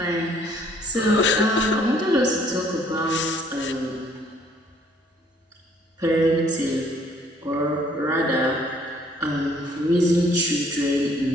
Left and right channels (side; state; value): both; normal; correlation 0.62